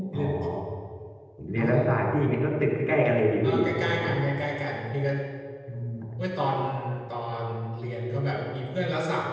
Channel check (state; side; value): identical; both; correlation 1.00